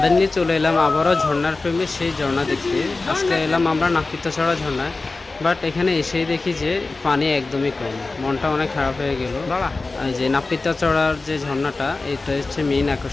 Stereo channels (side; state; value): right; quieter; 3.5 dB